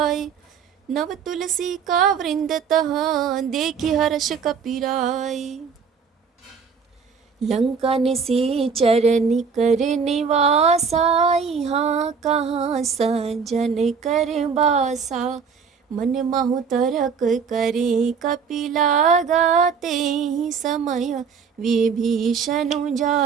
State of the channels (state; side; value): quieter; left; 6.0 dB